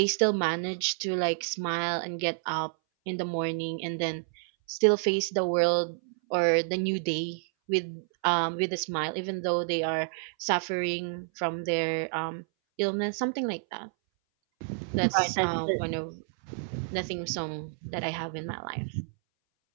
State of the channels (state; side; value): silent; left; 58 dB below the other